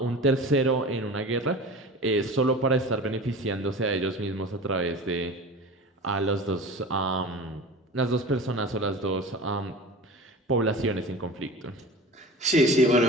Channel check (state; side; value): normal; both; correlation 0.35